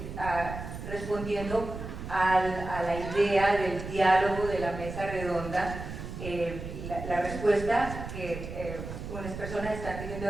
respondiendo a la idea del diálogo de la mesa redonda, la respuesta que unas personas están teniendo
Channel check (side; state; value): right; noise; rumble, 9 dB below the sound